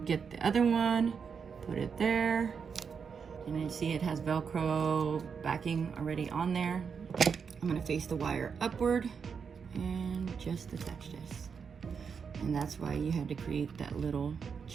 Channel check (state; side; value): quieter; left; 6.2 dB